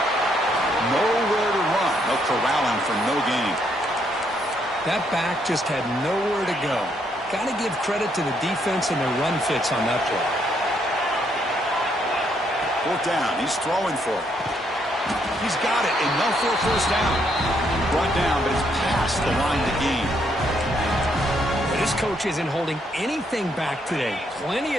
Nowhere to run. No corralling for no gain. That back just had nowhere to go. Got to give credit to the defense and their run fits on that play. Fourth down. He's throwing for it. He's got it. Enough for a first down. Brought down, but it's past the line to gain. This coach isn't holding anything back today. Plenty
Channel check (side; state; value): both; normal; correlation 0.73